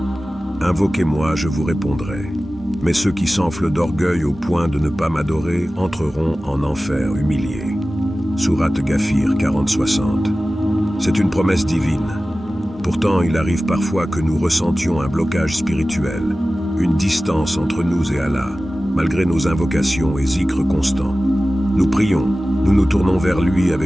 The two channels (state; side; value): normal; both; correlation 0.96